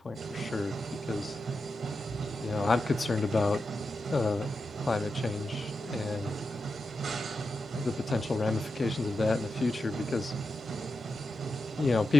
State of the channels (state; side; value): normal; both; correlation 0.89